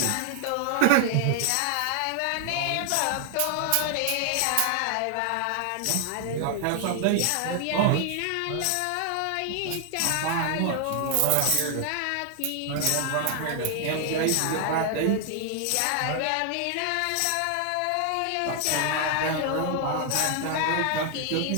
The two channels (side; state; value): both; different; correlation 0.00